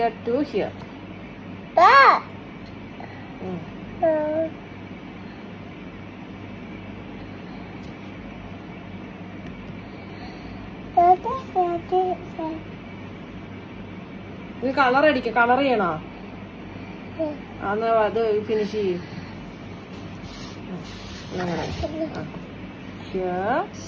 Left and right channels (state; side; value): identical; both; correlation 1.00